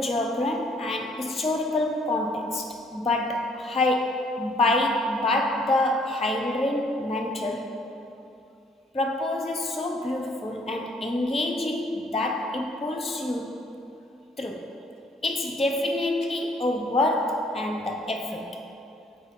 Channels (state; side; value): normal; both; correlation 0.63